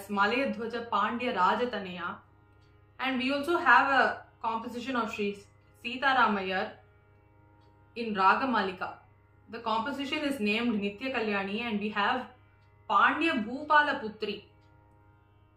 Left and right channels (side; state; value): both; identical; correlation 1.00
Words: Male Dhwaja Pandya Rajataneya. And we also have a composition of Sri Sita Ramayar in Raga Malika. The composition is named Nitya Kalyani, and we have Pandya Bhupala Putri.